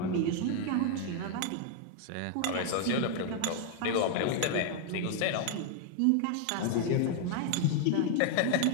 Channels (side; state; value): both; different; correlation 0.00